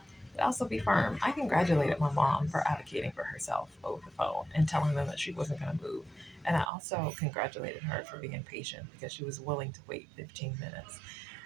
but also be firm. I congratulated my mom for advocating for herself over the phone and telling them that she wasn't going to move. And I also congratulated her for being patient because she was willing to wait 15 minutes.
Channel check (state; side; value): drops out; left; at 6.7 s